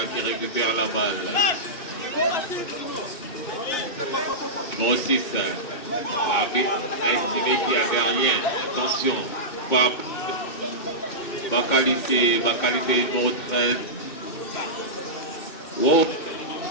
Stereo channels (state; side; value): late; right; 2.6 ms